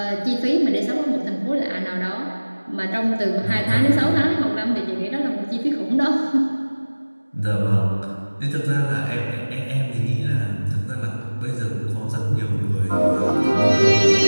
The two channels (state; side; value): inverted; both; correlation -1.00